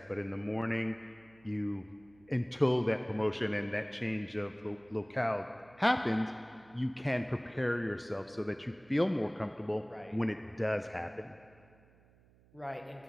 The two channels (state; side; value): noise; right; hum, 28 dB below the sound